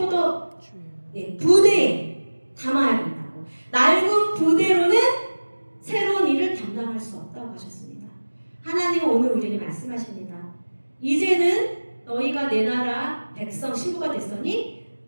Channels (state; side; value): inverted; both; correlation -1.00